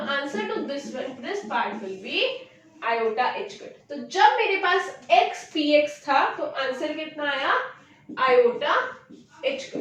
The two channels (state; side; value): identical; both; correlation 1.00